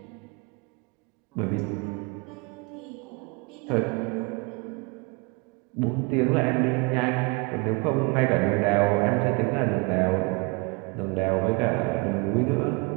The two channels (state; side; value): quieter; left; 29.8 dB